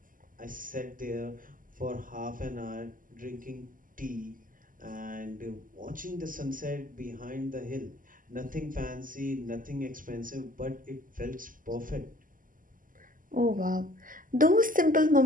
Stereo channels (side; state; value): left; late; 0.40 ms